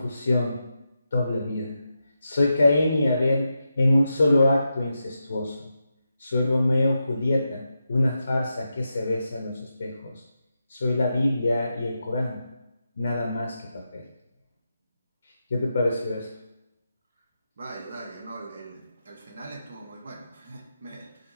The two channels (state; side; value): inverted; both; correlation -0.88